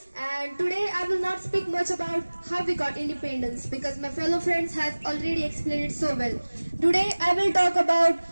and today I will not speak much about how we got independence because my fellow friends have already explained it so well. Today I will talk about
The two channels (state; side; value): inverted; both; correlation -1.00